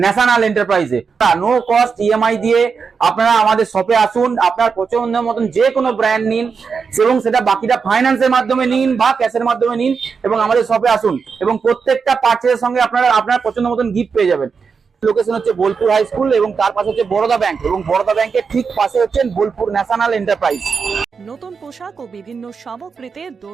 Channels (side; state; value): left; quieter; 5.5 dB